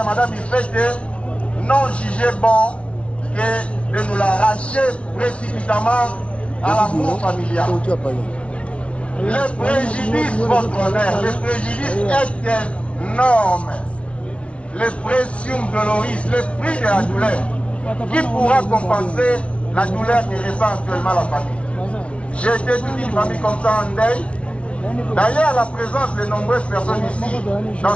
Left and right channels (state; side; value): late; right; 0.061 ms